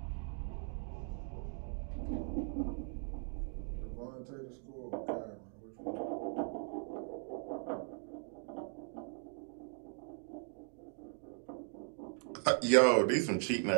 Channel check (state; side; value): silent; left; 52 dB below the other